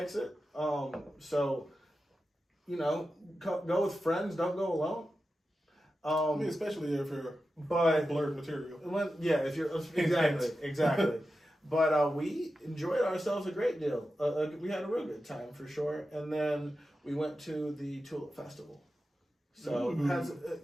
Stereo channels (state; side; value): normal; both; correlation 0.91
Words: So, go with friends. Don't go alone. I mean, especially if you're But blurred material. if you're exactly. But we enjoyed ourselves a great deal. We had a real good time for sure. And then we went to the Tulip Festival. So